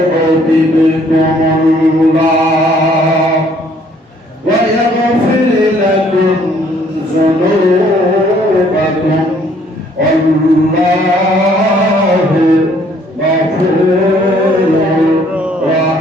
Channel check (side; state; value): both; normal; correlation 0.62